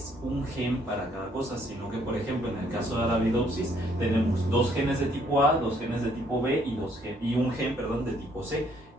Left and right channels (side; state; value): both; normal; correlation 0.66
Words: un gen para cada cosa, sino que, por ejemplo, en el caso de Arabidopsis tenemos 2 genes de tipo A, 2 genes de tipo B y un gen de tipo C.